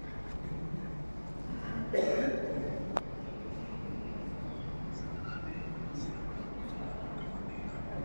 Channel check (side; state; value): both; inverted; correlation -1.00